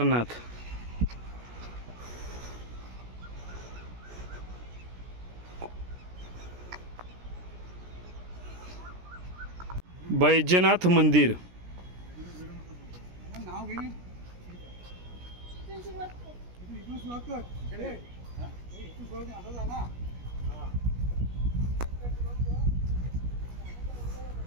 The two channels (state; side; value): late; left; 17 ms